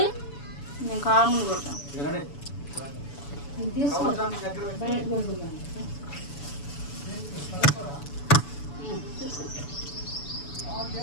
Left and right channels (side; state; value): right; late; 7.0 ms